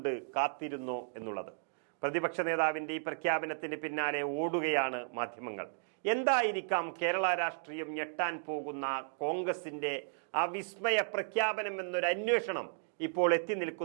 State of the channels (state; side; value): silent; left; digital silence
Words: കാത്തിരുന്നോ എന്നുള്ളത്. പ്രതിപക്ഷ നേതാവിന്റെ ഈ പ്രഖ്യാപനത്തിന് പിന്നാലെ ഓടുകയാണ് മാധ്യമങ്ങൾ. എന്തായിരിക്കാം കേരള രാഷ്ട്രീയം ഞെട്ടാൻ പോകുന്ന കോൺഗ്രസിന്റെ ആ വിസ്മയ പ്രഖ്യാപനം എന്നൊരു അന്വേഷണം ഇപ്പോൾ എത്തി